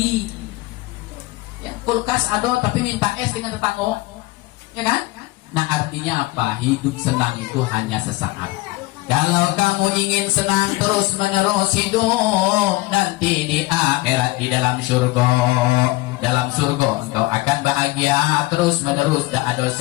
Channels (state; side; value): quieter; right; 20.8 dB